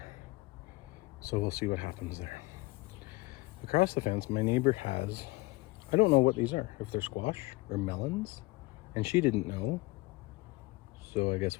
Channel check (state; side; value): quieter; right; 21.9 dB